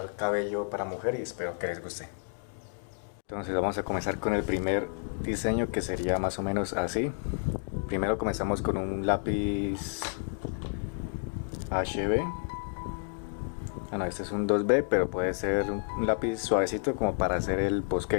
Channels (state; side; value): silent; right; 57 dB below the other